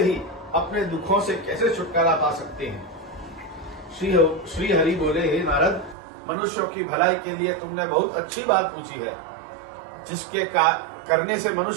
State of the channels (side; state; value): left; drops out; at 6.0 s